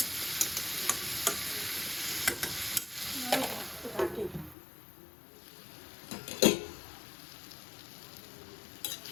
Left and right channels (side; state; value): right; drops out; at 4.5 s